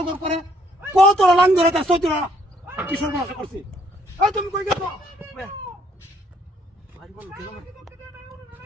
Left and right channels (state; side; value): normal; both; correlation 0.66